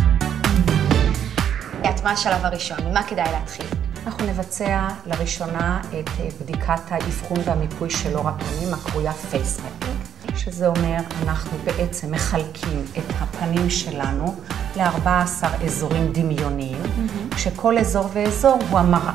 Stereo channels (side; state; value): left; quieter; 9.3 dB